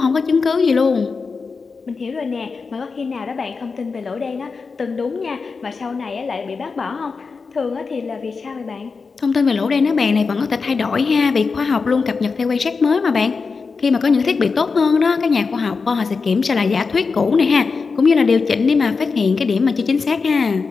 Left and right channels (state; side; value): quieter; right; 4.7 dB